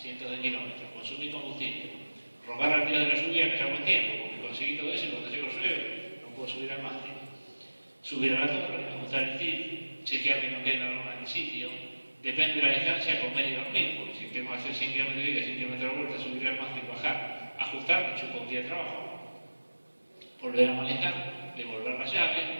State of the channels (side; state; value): both; inverted; correlation -1.00